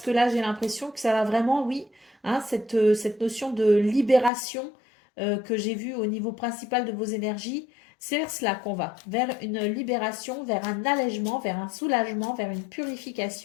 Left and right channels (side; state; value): right; drops out; at 4.3 s